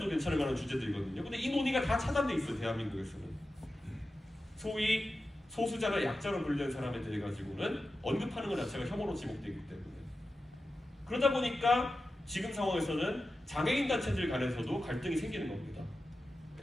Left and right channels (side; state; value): both; normal; correlation 0.92